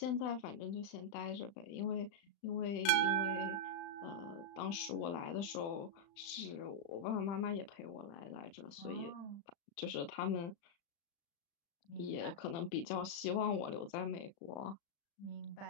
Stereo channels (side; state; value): right; late; 35 ms